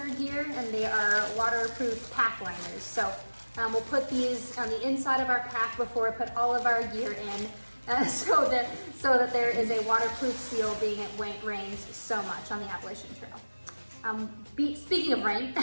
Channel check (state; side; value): inverted; both; correlation -1.00